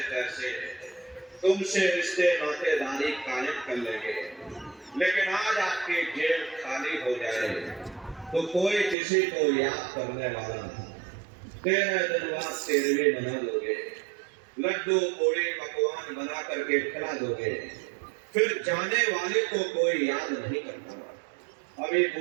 तैसे तुमसे रिश्ते नातेदारी कायम कर लेंगे, लेकिन आज आपकी जेब खाली हो जाए तो कोई किसी को याद करने वाला नहीं। 13 दिन बाद 13वीं मना दोगे, लड्डू पूड़ी पकवान बना करके खिला दोगे, फिर जाने वाले को कोई याद नहीं करता। अभी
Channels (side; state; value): left; drops out; at 9.0 s